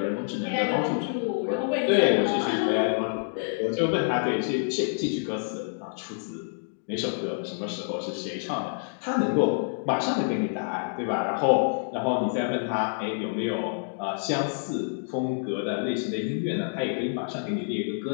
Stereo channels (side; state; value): right; silent; digital silence